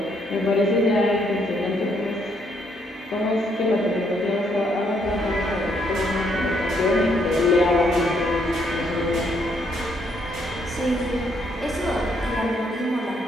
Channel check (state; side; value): normal; both; correlation 0.72